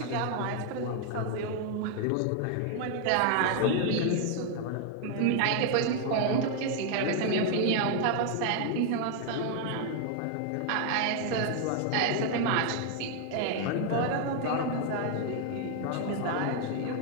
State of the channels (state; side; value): different; both; correlation 0.00